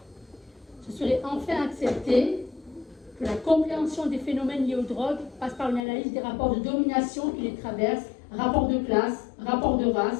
Ce serait enfin accepter que la compréhension des phénomènes liés aux drogues passe par une analyse des rapports de domination qui les traversent, rapports de classe, rapports de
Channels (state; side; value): drops out; right; at 5.8 s